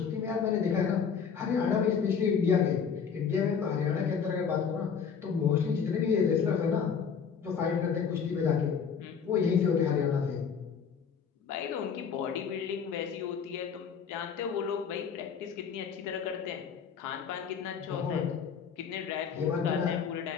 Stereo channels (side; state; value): right; quieter; 6.7 dB